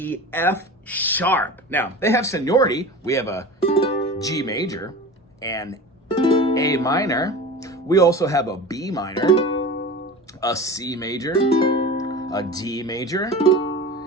F sharp. Now, they have seniority. We have a G major and A minor. We also have a B minor, a C major, a D major,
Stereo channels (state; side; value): normal; both; correlation 0.34